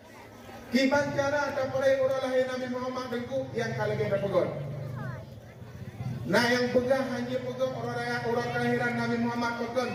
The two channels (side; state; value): both; identical; correlation 1.00